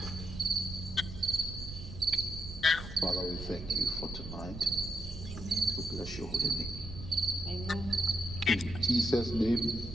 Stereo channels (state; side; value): noise; right; rumble, 10 dB below the sound